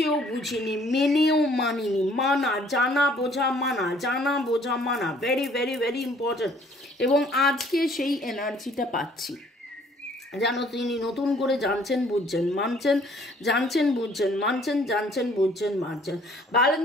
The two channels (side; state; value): both; normal; correlation 0.59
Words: বুঝিনি, মেনেও মানিনি। মানা, জানা বোঝা মানা, জানা বোঝা মানা, ভেরি ভেরি ভেরি ইম্পর্টেন্ট। এবং আজকে সেই এনার্জিটা পাচ্ছি, যেন তিনি নতুন করে জানছেন, বুঝছেন, মানছেন, জানছেন, বুঝছেন, মানছেন, জানছেন, বুঝছেন, মানছেন।